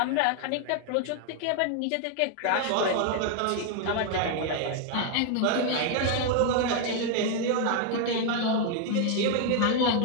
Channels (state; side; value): different; both; correlation 0.00